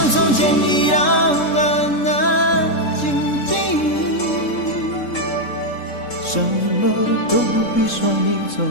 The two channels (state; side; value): late; right; 3.7 ms